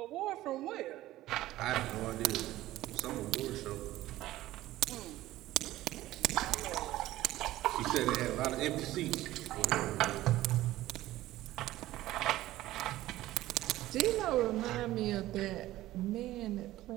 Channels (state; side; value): quieter; left; 15.7 dB